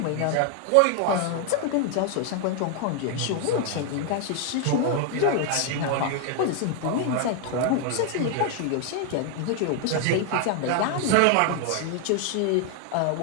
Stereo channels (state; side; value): different; both; correlation 0.00